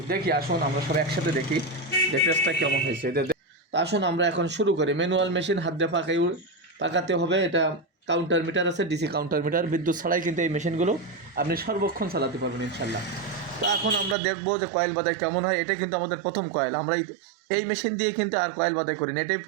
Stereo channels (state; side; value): drops out; left; at 14.2 s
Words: দেখি আসুন আমরা সব একসাথে দেখি যে পেজটা কেমন হয়েছে। তো আসুন আমরা এখন শুরু করি। ম্যানুয়াল মেশিন, হাত দিয়ে পাকাতে হবে। এটা কাউন্টার মিটার আছে, ডিসি কাউন্টার মিটার, বিদ্যুৎ ছাড়াই কিন্তু এই মেশিনগুলো আপনি সর্বক্ষণ চালাতে পারবেন ইনশাল্লাহ। তো এখন আমরা দেখবো যে কয়েল বাদাই কেমন হয়। এটা কিন্তু আমাদের প্রথম কয়েল, আমরা এই মেশিন দিয়ে কিন্তু আর কয়েল বাদাই করি না, এটাই